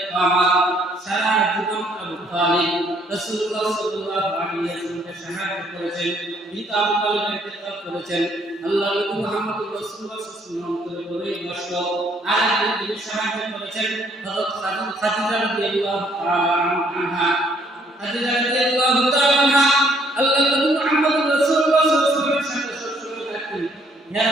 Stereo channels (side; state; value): both; normal; correlation 0.65